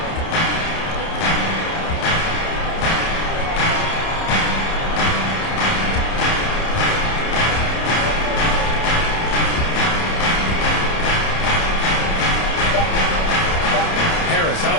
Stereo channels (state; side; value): late; right; 30 ms